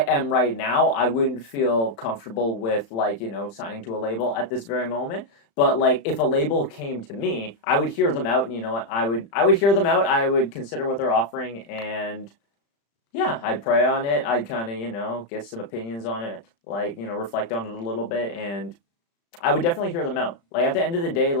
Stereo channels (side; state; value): right; late; 35 ms